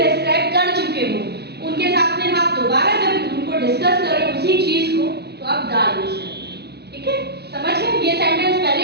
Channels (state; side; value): late; left; 0.48 ms